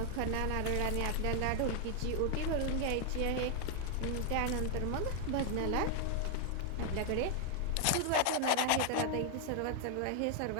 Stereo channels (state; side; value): different; both; correlation 0.00